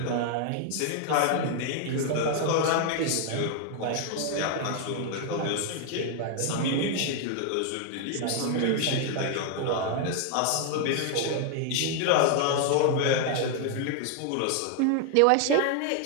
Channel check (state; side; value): different; both; correlation 0.00